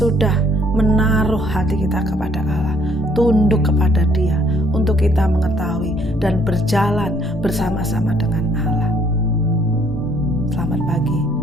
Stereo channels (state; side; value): normal; both; correlation 0.63